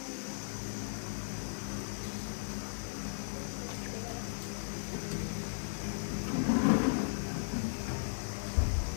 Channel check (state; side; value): silent; right; digital silence